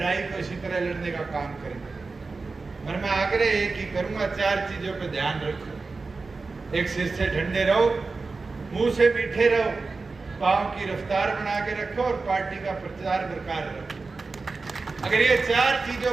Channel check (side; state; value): left; quieter; 4.0 dB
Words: को इसी तरह लड़ने का काम करेंगे। और मैं आग्रह एक ही करूंगा, 4 चीजों पर ध्यान रखो। एक, सिर से ठंडे रहो, मुंह से मीठे रहो, पांव की रफ्तार बना के रखो और पार्टी का प्रचार बरकरार रखो। अगर ये 4